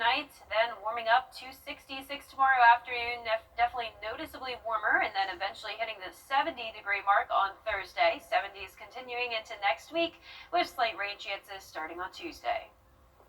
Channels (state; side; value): identical; both; correlation 1.00